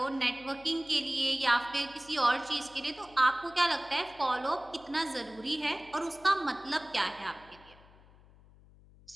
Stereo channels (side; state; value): left; noise; hum, 25 dB below the sound